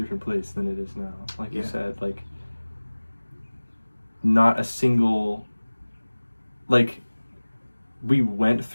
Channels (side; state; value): both; inverted; correlation -1.00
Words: place than it is now. Like you said, like not a single. Like we went